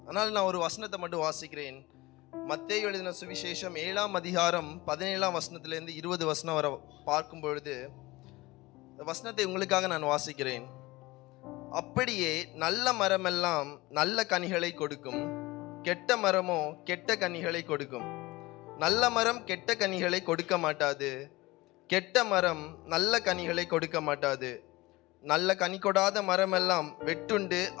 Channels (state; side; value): quieter; right; 20.8 dB